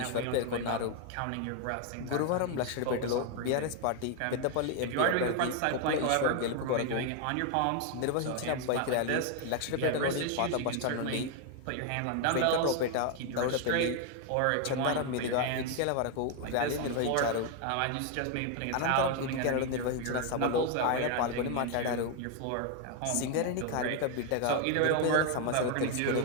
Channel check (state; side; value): different; both; correlation 0.01